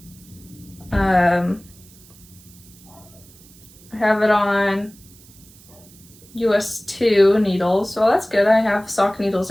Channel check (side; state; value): right; noise; hiss, 24 dB below the sound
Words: I have it on US 2 needles, so that's good. I have sock needles